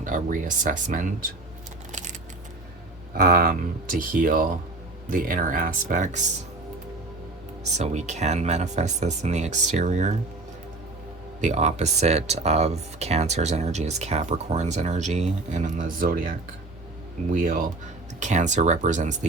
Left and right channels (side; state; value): left; quieter; 3.2 dB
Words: a reassessment, to heal the inner aspects so we can manifest this in the exterior. The opposite of Cancer's energy is Capricorn's energy, and in the zodiac wheel, Cancer represents